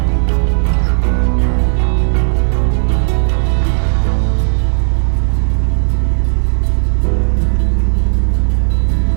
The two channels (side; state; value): left; silent; digital silence